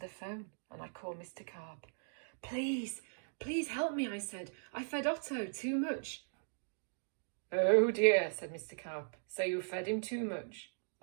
phone and I called Mr. Carp. Please, please help me, I said. I fed Otto too much. Oh dear, said Mr. Carp. So you fed him too much?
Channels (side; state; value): left; silent; digital silence